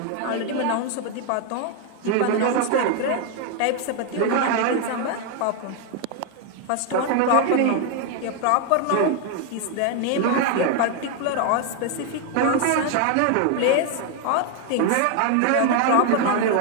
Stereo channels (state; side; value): different; both; correlation 0.01